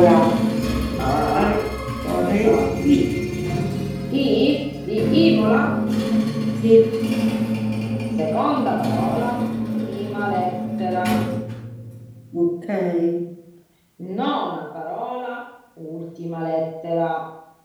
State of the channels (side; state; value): both; identical; correlation 1.00